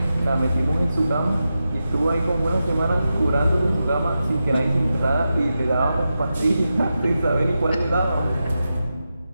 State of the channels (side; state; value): both; inverted; correlation -0.90